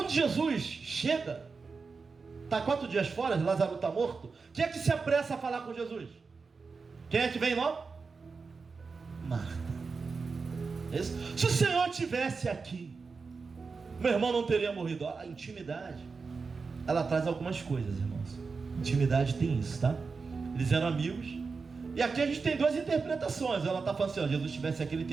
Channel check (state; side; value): quieter; left; 4.7 dB